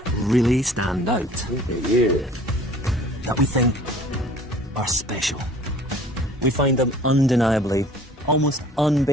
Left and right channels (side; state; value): both; normal; correlation 0.50